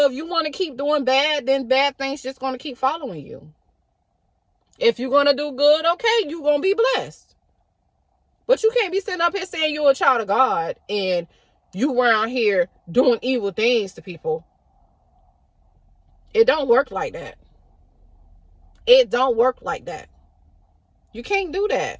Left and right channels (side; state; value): both; identical; correlation 1.00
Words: if you want to keep doing bad, then bad things just gonna keep following you. If you're gonna do good, okay, you're gonna be blessed. But you can't be sitting up here saying you're a child of God and you around here doing evil things to people. It don't work like that. It don't work like that. You can't do that.